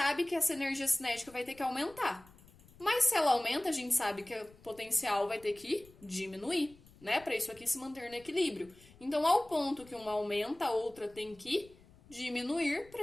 que essa energia cinética vai ter que aumentar. Mas se ela aumenta, a gente sabe que o potencial vai ter que diminuir, né? Para isso aqui se manter no equilíbrio. Então, ao ponto que uma aumenta, a outra tem que diminuir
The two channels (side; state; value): left; noise; rumble, 25 dB below the sound